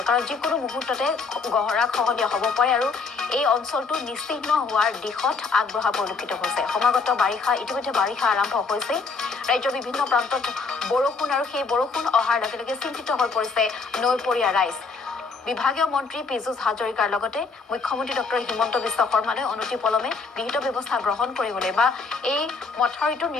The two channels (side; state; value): right; quieter; 4.5 dB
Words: কাৰণ যিকোনো মুহূৰ্ততে গহৰা খহনীয়া হ'ব পাৰে আৰু এই অঞ্চলটো নিশ্চিহ্ন হোৱাৰ দিশত আগবঢ়া পৰিলক্ষিত হৈছে। সমাগত বাৰিষা ইতিমধ্যে বাৰিষা আৰম্ভ হৈছে। ৰাজ্যৰ বিভিন্ন প্ৰান্তত বৰষুণ, আৰু সেই বৰষুণ অহাৰ লগে লগে চিন্তিত হৈ পৰিছে নৈপৰীয়া ৰাইজ। বিভাগীয় মন্ত্ৰী পীযুষ হাজৰিকাৰ লগতে মুখ্যমন্ত্ৰী ডক্টৰ হিমন্ত বিশ্ব শৰ্মালৈ অনতিপলমে বিহিত ব্যৱস্থা গ্ৰহণ কৰিবলৈ বা এই মথাউৰিটো